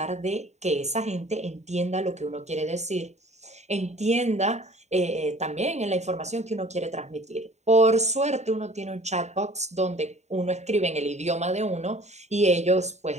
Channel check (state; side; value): late; left; 0.33 ms